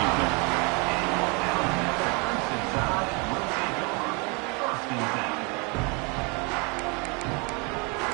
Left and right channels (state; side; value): quieter; left; 31.4 dB